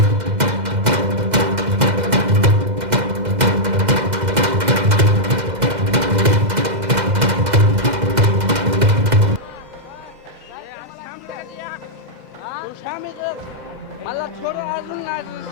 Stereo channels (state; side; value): late; left; 2.0 ms